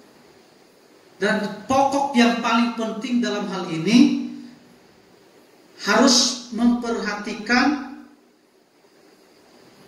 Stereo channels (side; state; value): both; identical; correlation 1.00